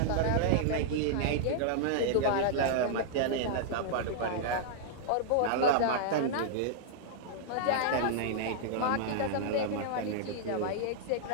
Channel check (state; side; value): different; both; correlation -0.01